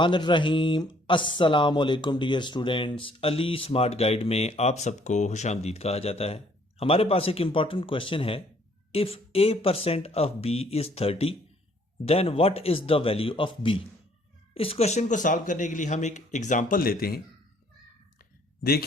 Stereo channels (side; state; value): both; normal; correlation 0.62